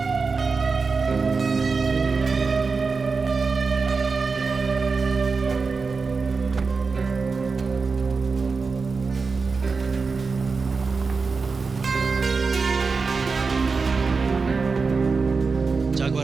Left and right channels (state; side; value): quieter; left; 4.6 dB